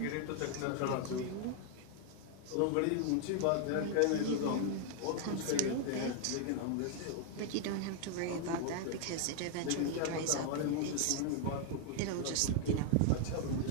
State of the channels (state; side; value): different; both; correlation 0.00